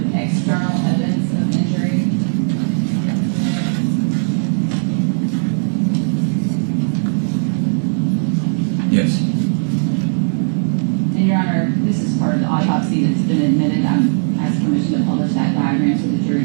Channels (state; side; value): silent; left; digital silence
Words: external evidence of injury. Yes. And Your Honor, this is part of the autopsy that's been admitted. I'm asking permission to publish that diagram so the jury